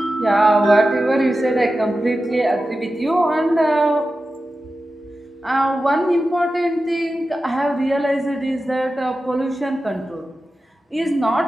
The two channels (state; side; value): normal; both; correlation 0.93